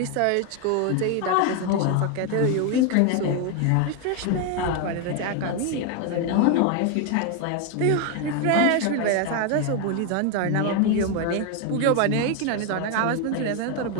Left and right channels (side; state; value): both; different; correlation 0.01